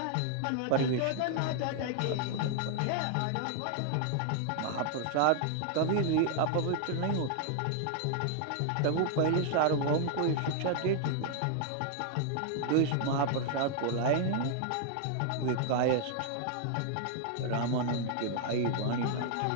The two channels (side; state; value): both; different; correlation 0.00